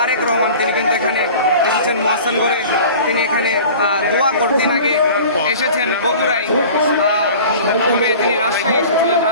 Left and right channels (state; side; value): inverted; both; correlation -0.42